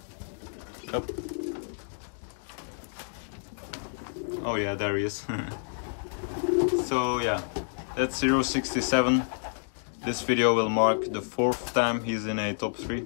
Up. Oh yeah, there he is. So yeah, that's 067. This video will mark the 4th time he's in a top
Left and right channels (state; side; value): silent; right; digital silence